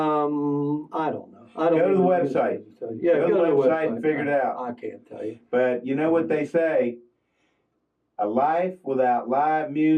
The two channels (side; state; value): both; identical; correlation 1.00